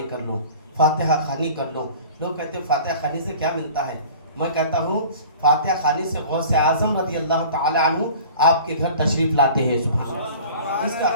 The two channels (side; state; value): both; inverted; correlation -0.43